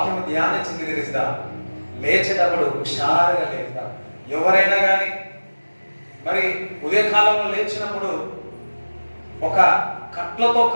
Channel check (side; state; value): both; inverted; correlation -1.00